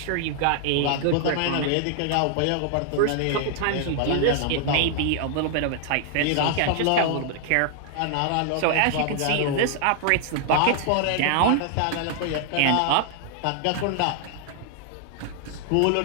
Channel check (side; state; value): both; different; correlation 0.00